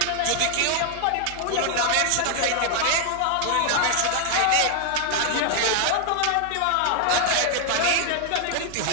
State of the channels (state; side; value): different; both; correlation 0.00